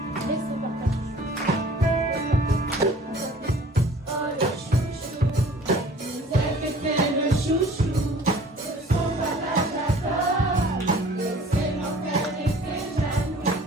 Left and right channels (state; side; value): normal; both; correlation 0.49